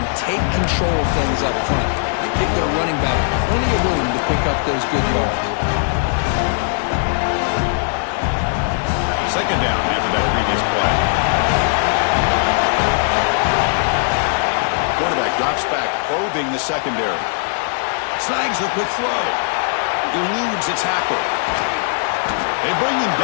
take control of things up front. They give their running back plenty of room to pick up those good yards. 2nd down after that previous play. Quarterback drops back, probing the secondary. Snags the quick throw. Eludes the tackle. They bring him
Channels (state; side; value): silent; right; digital silence